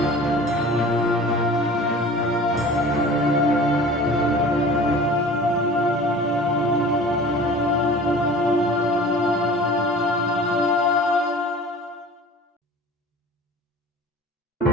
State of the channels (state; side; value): normal; both; correlation 0.42